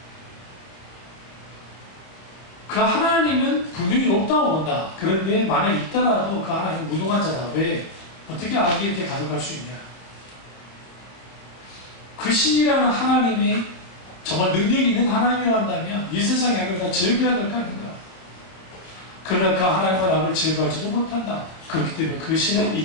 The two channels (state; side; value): late; right; 30 ms